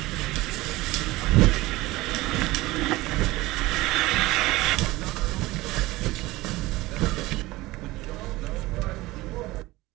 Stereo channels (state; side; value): quieter; left; 19.4 dB